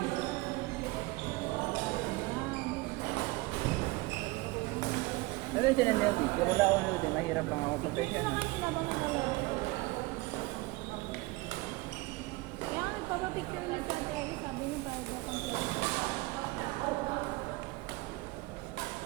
Ano yung siya nandito? Pero wala ako nandito. Mahirap lang ako pag-search yan. Sa kanila bang dalawa? Kaya nga nagpapapicture niya sa Terry, sabi niya para daw kang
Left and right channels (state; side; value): quieter; left; 22.3 dB